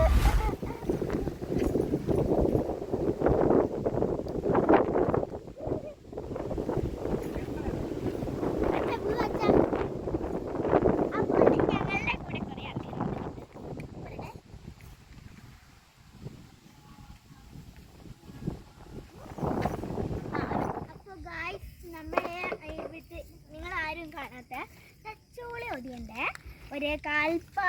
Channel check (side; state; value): both; identical; correlation 1.00